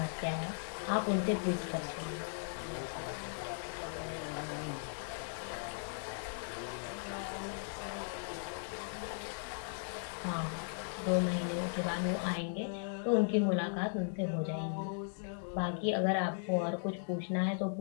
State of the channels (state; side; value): silent; right; digital silence